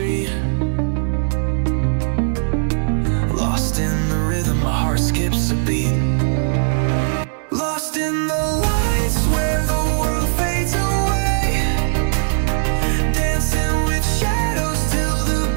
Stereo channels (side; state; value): left; silent; digital silence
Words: Lost in the rhythm, my heart skips a beat. Lost in the lights where the world fades away. Dancing with shadows till the